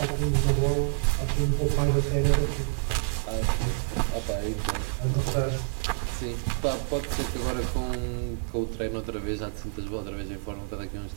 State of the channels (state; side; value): silent; left; digital silence